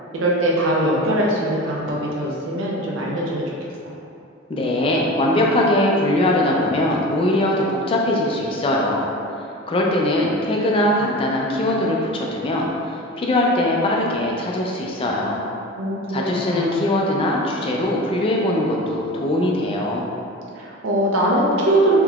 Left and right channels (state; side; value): normal; both; correlation 0.32